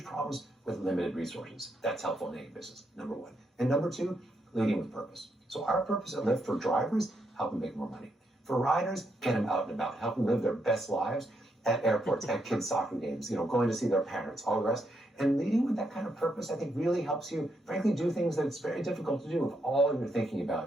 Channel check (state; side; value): normal; both; correlation 0.79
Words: problems with limited resources. That's helpful in any business, number one. And number 2, leading with purpose. So our purpose at Lyft for drivers, help them make more money. For riders, get them out and about, help them live their best lives at airports, at kids' soccer games, going to see their parents, all the rest. And leading with that kind of purpose, I think, really helps you, frankly, do things that it's very difficult to do if all you're thinking